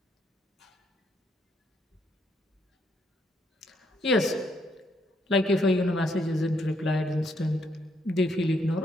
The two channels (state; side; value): normal; both; correlation 0.74